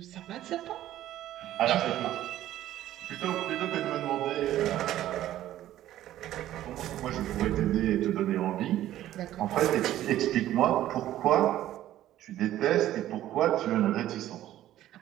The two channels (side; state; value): left; quieter; 13.2 dB